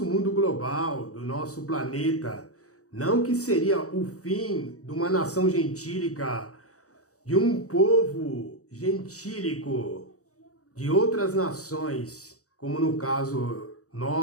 mundo global, do nosso planeta. Não que seria o fim de uma nação gentílica, de um povo gentílico, de outras nações, como no caso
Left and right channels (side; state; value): right; late; 0.66 ms